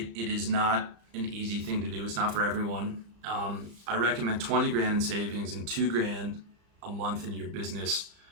is not an easy thing to do. It's not for everyone. I recommend 20 grand in savings and 2 grand a month in your business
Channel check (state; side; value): late; left; 35 ms